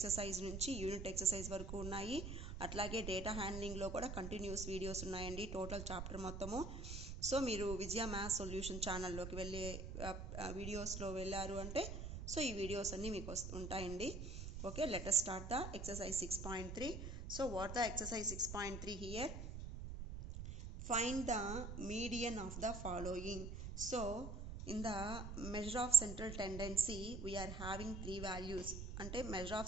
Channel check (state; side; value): noise; right; rumble, 6 dB below the sound